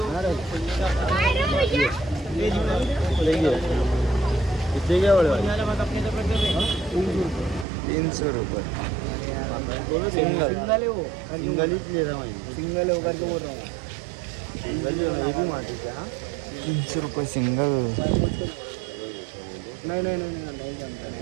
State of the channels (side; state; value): left; drops out; at 7.7 s